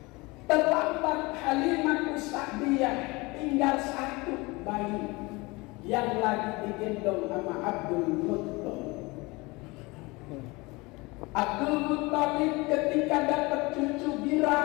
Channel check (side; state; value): right; quieter; 24.2 dB